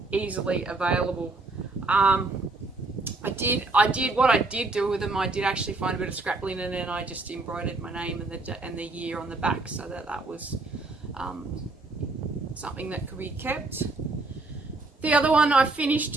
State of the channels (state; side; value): quieter; left; 3.3 dB